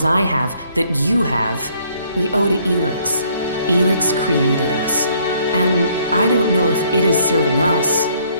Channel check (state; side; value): inverted; both; correlation -0.65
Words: I have that you have, we owe to ELEX. ELEX created us. And I don't know if it is serving us,